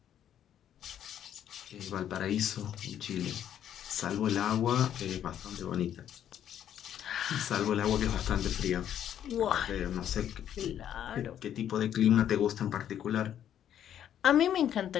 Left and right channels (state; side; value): quieter; right; 10.2 dB